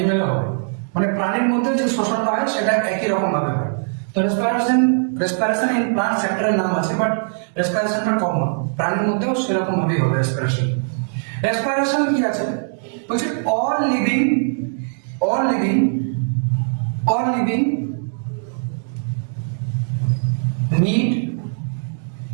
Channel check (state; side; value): silent; left; digital silence